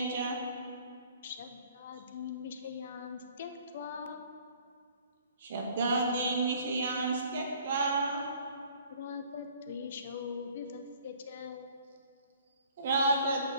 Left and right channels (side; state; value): both; inverted; correlation -0.55